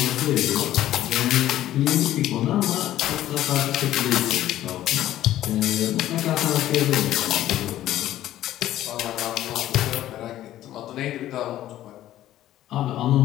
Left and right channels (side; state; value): right; quieter; 13.4 dB